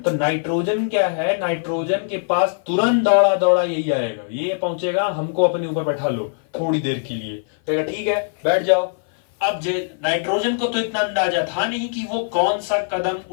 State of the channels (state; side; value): silent; right; 56 dB below the other